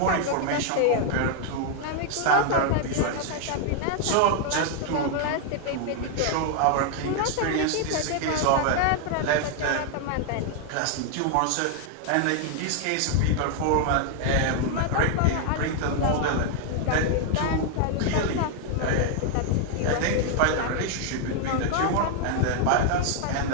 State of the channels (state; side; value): different; both; correlation 0.00